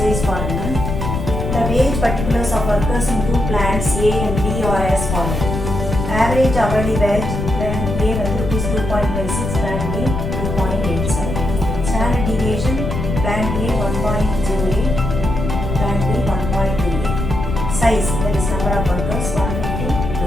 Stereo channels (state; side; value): noise; left; rumble, 3 dB below the sound